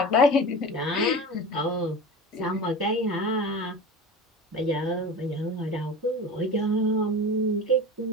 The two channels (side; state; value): both; normal; correlation 0.32